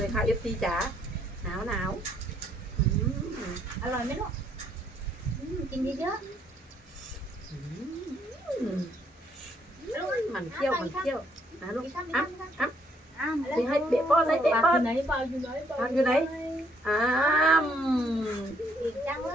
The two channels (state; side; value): normal; both; correlation 0.68